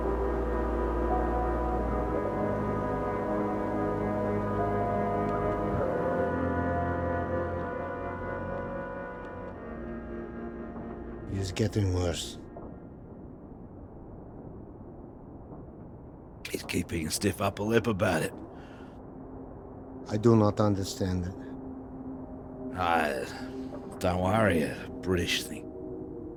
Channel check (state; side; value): identical; both; correlation 1.00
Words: It's getting worse. He's keeping a stiff upper lip about it. I do not understand it. Don't worry, a British thing.